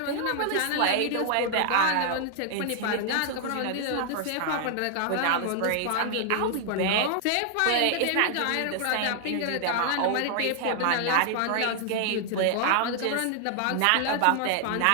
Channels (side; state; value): both; different; correlation 0.00